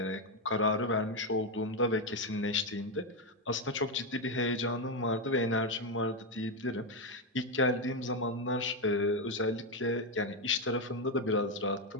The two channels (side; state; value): both; normal; correlation 0.06